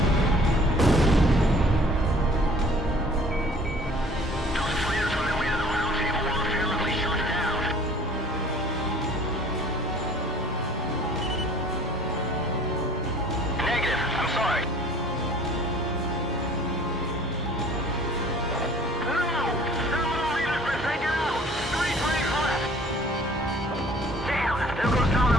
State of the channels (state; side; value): normal; both; correlation 0.52